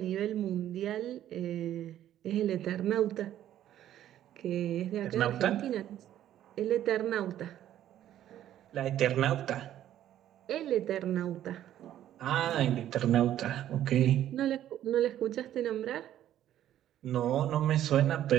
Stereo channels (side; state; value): left; quieter; 11.9 dB